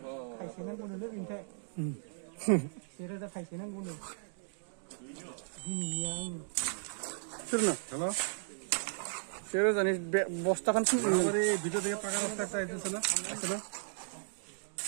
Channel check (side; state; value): left; silent; digital silence